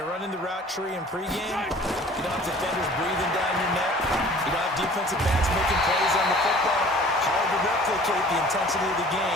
running the route tree in pregame, you don't have defenders breathing down your neck. You don't have defensive backs making plays on the football. Hard to replicate the intensity of the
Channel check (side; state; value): both; normal; correlation 0.49